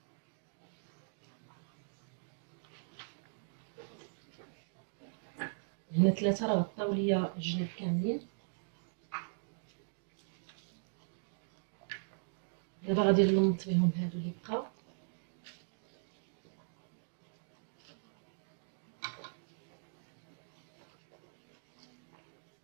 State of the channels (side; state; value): left; silent; digital silence